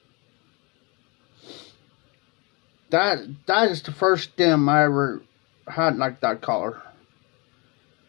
That is the first stem I ever had like that color.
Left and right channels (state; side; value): quieter; right; 28.9 dB